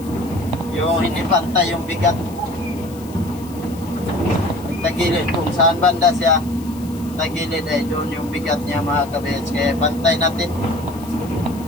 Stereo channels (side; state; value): left; noise; hiss, 20 dB below the sound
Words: yung hindi pantay yung bigat. Tagilid kung saan banda siya tagilid ay doon yung bigat niya mga kabits, kaya pantay natin.